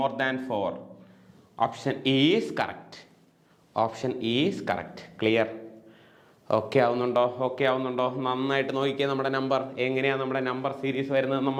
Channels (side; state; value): both; identical; correlation 1.00